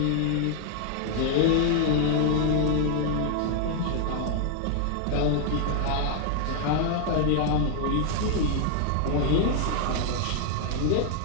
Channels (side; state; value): both; different; correlation 0.00